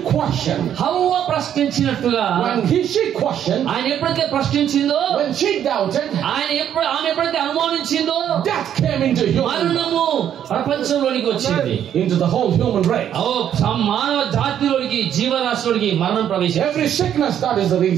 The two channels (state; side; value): quieter; left; 9.9 dB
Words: questioned. హవ్వ ప్రశ్నించినట్టుగా When she questioned, ఆయన ఎప్పుడైతే ప్రశ్నించిందో, when she doubted, ఆమె ఎప్పుడైతే అనుమానించిందో, death came into human, మరణము ప్రపంచంలోనికి వచ్చింది. into the whole human race. మానవ జాతిలోనికి జీవరాశిలోనికి మరణం ప్రవేశించింది. Every sickness, that is the